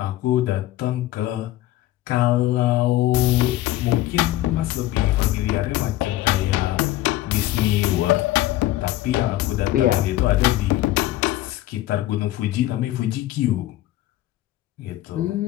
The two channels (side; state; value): right; quieter; 15.3 dB